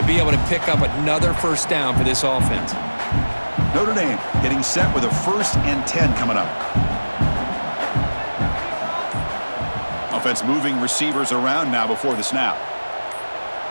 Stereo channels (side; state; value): both; inverted; correlation -1.00